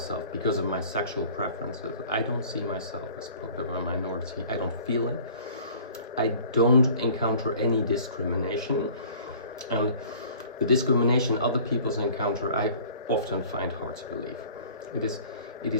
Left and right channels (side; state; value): both; inverted; correlation -0.49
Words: because of my sexual preferences, I don't see myself as part of a minority. I don't feel it. I don't encounter any discrimination. And the discrimination other people encounter, I often find hard to believe. It